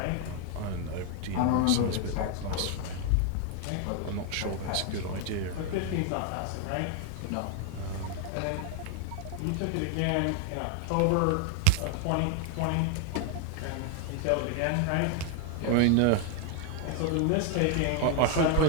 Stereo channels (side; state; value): both; different; correlation 0.00